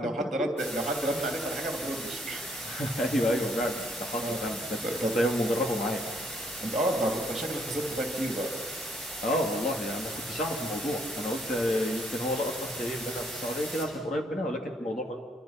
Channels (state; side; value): normal; both; correlation 0.69